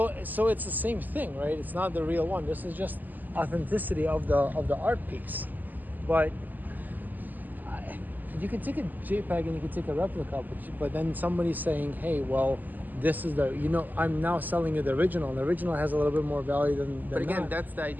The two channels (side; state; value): left; late; 0.085 ms